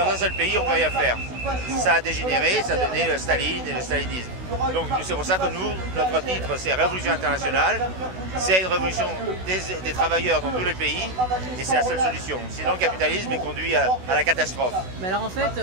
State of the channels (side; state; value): left; late; 16 ms